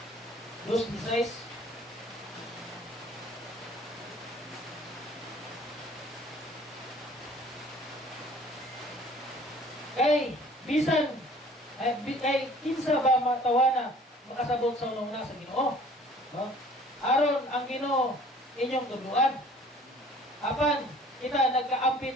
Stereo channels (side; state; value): both; normal; correlation 0.52